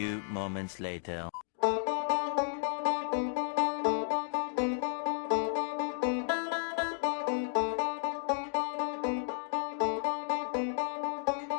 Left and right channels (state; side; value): silent; right; digital silence